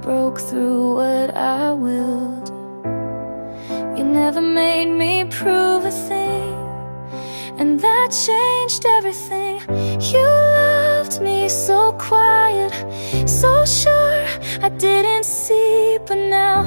through what I willed. You never made me prove a thing, and that changed everything. You loved me so quiet, so sure I didn't see, but now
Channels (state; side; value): inverted; both; correlation -1.00